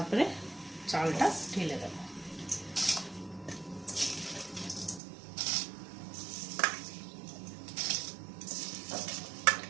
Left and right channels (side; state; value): left; drops out; at 5.0 s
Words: চালটা ঢেলে দেব।